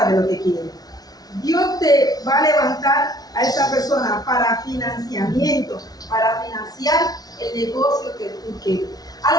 de lo que quieres. Dios te va a levantar a esa persona para financiamiento, para financiar el negocio que tú quieres. A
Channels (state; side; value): late; right; 0.19 ms